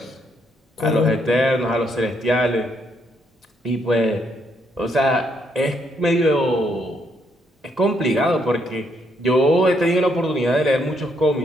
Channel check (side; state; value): both; normal; correlation 0.74